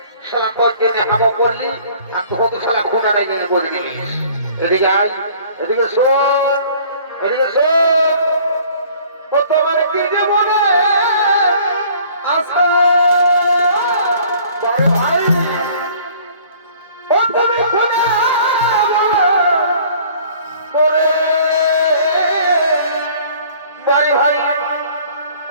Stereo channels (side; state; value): both; inverted; correlation -0.53